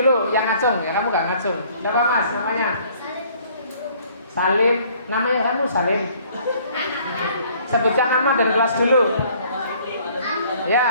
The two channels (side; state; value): both; inverted; correlation -0.58